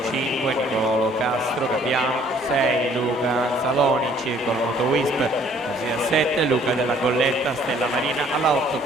5 Nicolo Castro, Capiano, 6 Luca Saloni, Circolo Nuoto Wisp, corsia 7 Luca della Colletta, Stella Marina, alla 8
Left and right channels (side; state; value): both; normal; correlation 0.59